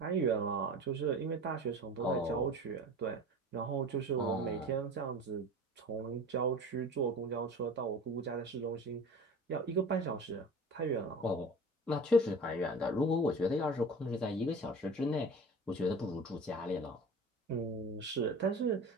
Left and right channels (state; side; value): normal; both; correlation 0.37